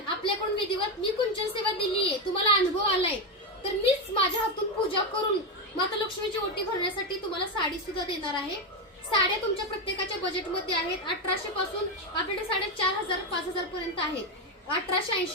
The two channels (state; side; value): normal; both; correlation 0.09